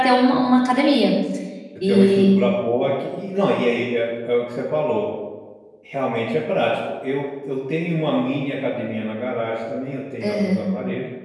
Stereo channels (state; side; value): identical; both; correlation 1.00